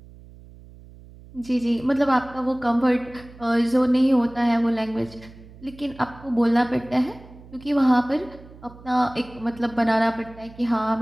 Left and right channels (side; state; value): right; noise; hum, 20 dB below the sound